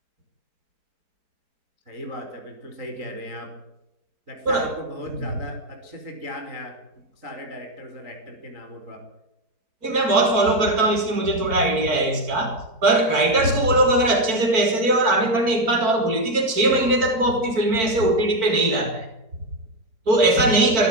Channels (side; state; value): left; late; 4.5 ms